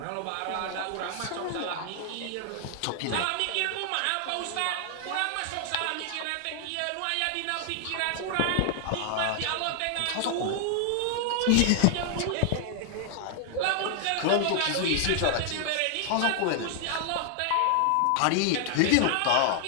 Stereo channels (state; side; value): different; both; correlation 0.00